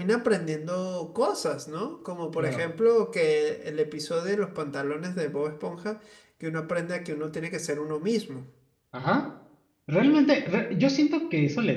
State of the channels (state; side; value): identical; both; correlation 1.00